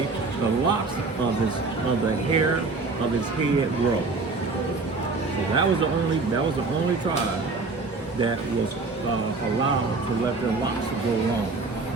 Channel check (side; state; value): left; quieter; 3.9 dB